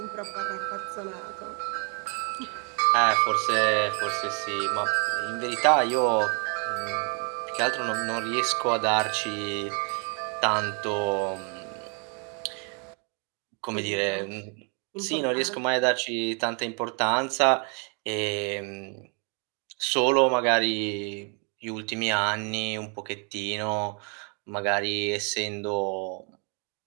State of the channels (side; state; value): left; quieter; 37.5 dB